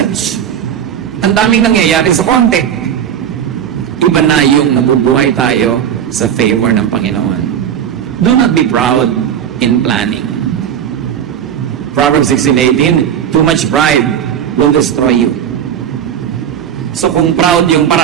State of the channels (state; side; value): quieter; left; 9.1 dB